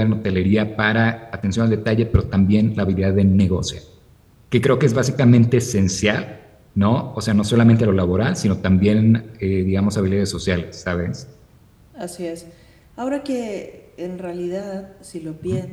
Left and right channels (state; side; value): identical; both; correlation 1.00